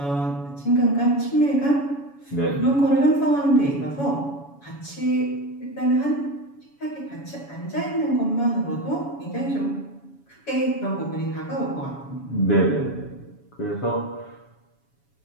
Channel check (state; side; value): late; right; 7.1 ms